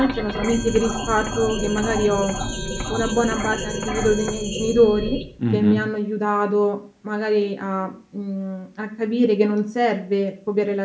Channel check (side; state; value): both; identical; correlation 1.00